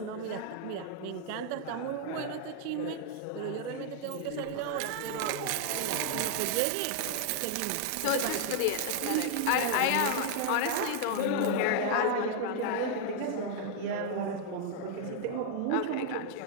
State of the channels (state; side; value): different; both; correlation 0.00